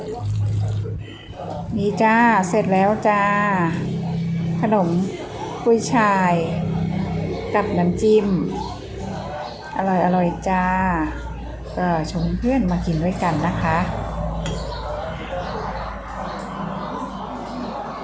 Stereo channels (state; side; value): identical; both; correlation 1.00